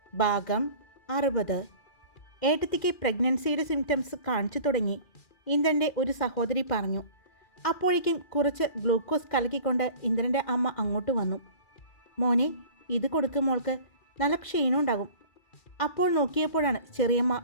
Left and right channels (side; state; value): right; late; 2.4 ms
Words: ഭാഗം 60. ഏട്ടത്തിക്ക് പ്രഗ്നൻസിയുടെ സിംറ്റംസ് കാണിച്ചു തുടങ്ങി. ഇന്ദ്രൻ്റെ ഒരു സഹോദരി പറഞ്ഞു. അപ്പോഴേക്കും കുറച്ച് ഗ്ലൂക്കോസ് കലക്കിക്കൊണ്ട് ഇന്ദ്രൻ്റെ അമ്മ അങ്ങോട്ട് വന്നു. മോനെ, ഇത് കൊടുക്കും, മോൾക്ക് നല്ല ക്ഷീണം ഉണ്ടാകും. അപ്പോൾ നോക്കിയപ്പോഴാണ് ചെറിയമ്മ